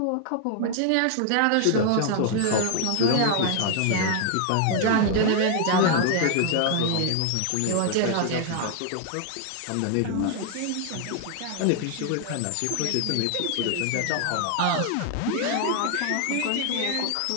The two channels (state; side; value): different; both; correlation 0.00